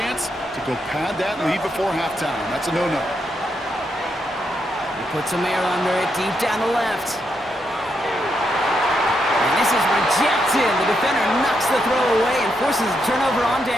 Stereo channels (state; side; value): normal; both; correlation 0.81